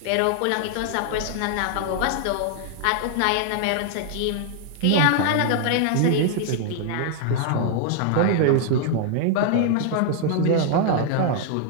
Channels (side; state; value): both; different; correlation 0.00